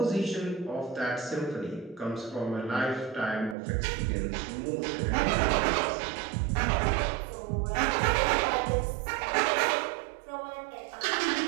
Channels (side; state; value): left; drops out; at 3.6 s